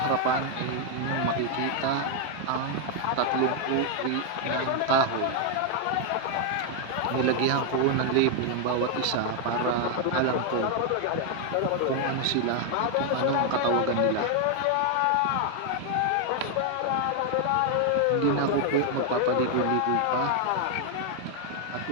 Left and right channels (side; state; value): both; different; correlation 0.00